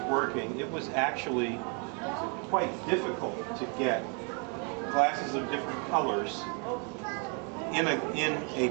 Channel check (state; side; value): quieter; left; 36.5 dB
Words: working, it was actually quite difficult to get glasses of different colors in